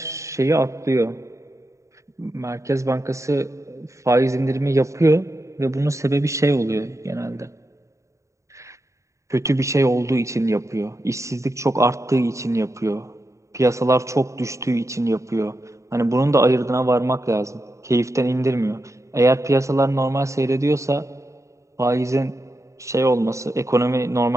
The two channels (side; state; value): left; late; 0.15 ms